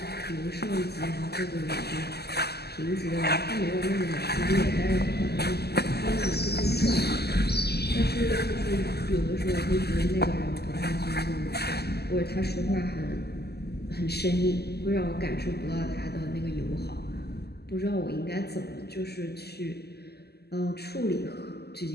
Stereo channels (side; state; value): right; late; 0.47 ms